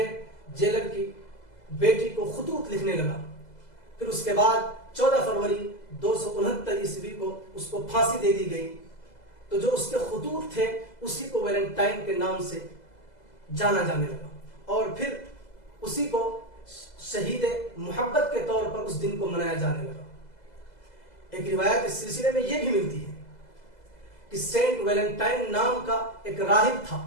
جیلر کی بیٹی کو خطوط لکھنے لگا۔ پھر اس کے بعد 14 فروری 269 عیسوی کو اس کو پھانسی دے دی گئی۔ تو جو اس کے خطوط تھے اسی کو ویلنٹائن کے نام سے جانا جانے لگا، اور پھر اسی کو شہید محبت کے طور پر اس دن کو منایا جانے لگا۔ ایک روایت اس سلسلے میں یہ بھی ملتی ہے کہ سینٹ ویلنٹائن نام کا ایک راہب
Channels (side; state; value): right; late; 2.0 ms